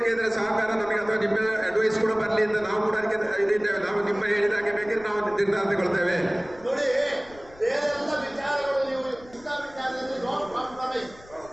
ಸಹಕಾರ ನಮಗೆ ಅಥವಾ ನಿಮ್ಮ ಅಡ್ವೈಸ್ ಕೂಡ ಬರಲಿ ಅಂತ ನಾವು ಕೂಡ ಅದಕ್ಕೆ ಇದಿದ್ದೇವೆ. ನಾವು ನಿಮ್ಮ ಹೇಳಿದಾಗೆ ಬೇಕಿದ್ರೆ ನಾವು ನಿರ್ಧಾರ ತಗೊಳ್ತೇವೆ. ನೋಡಿ ಬೇರೆಲ್ಲ ವಿಚಾರಗಳು ನೀವು ಇಂಥ ವಿಚಾರದಲ್ಲಿ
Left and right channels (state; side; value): noise; left; rumble, 23 dB below the sound